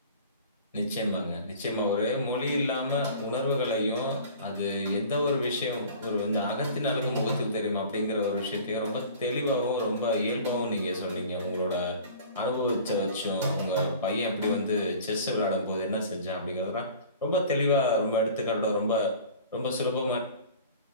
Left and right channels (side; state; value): both; inverted; correlation -0.44